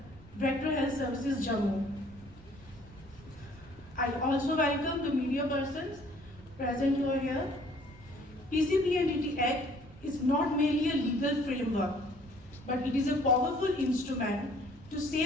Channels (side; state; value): right; noise; rumble, 21 dB below the sound